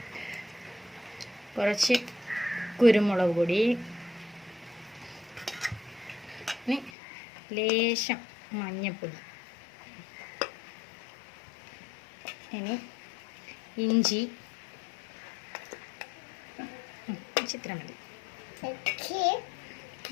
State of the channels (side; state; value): right; drops out; at 6.9 s